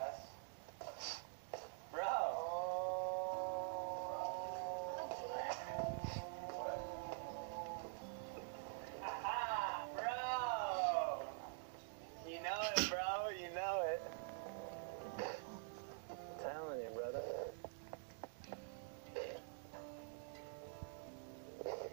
You know it, bro. You know it. Telling you, brother.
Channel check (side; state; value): left; silent; digital silence